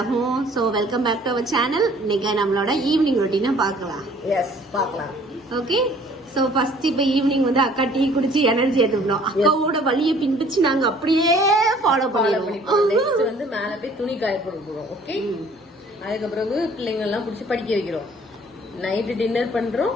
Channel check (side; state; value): both; normal; correlation 0.55